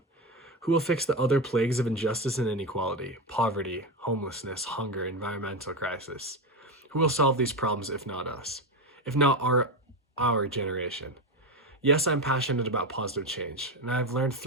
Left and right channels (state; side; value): normal; both; correlation 0.15